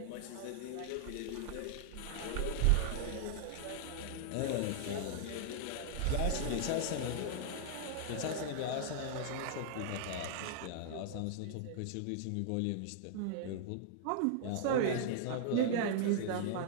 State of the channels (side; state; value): both; different; correlation -0.01